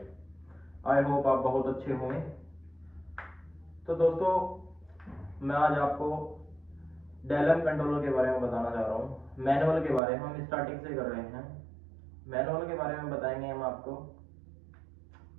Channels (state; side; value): drops out; left; at 10.0 s